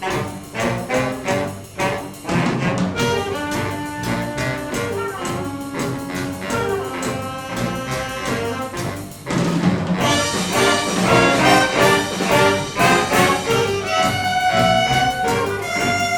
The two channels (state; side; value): identical; both; correlation 1.00